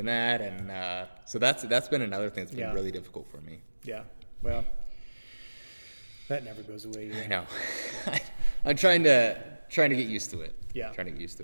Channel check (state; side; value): inverted; both; correlation -1.00